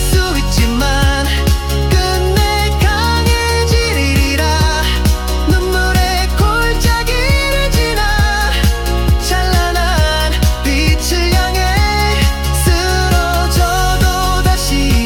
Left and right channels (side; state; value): both; identical; correlation 1.00